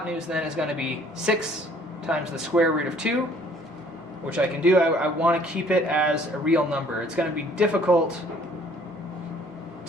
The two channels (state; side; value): normal; both; correlation 0.58